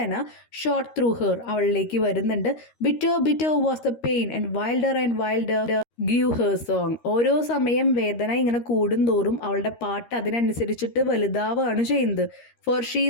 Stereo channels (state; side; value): late; right; 13 ms